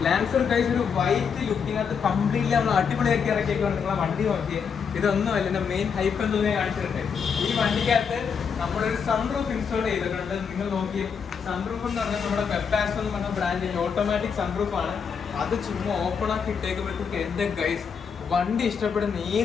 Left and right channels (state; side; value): quieter; right; 6.5 dB